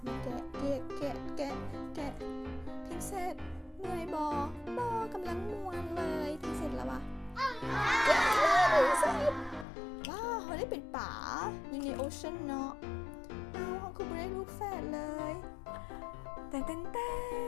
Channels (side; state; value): right; drops out; at 9.7 s